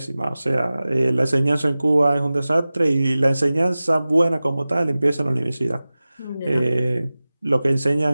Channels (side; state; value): both; inverted; correlation -0.97